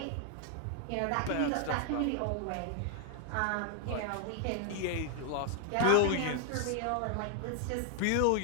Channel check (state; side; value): different; both; correlation 0.00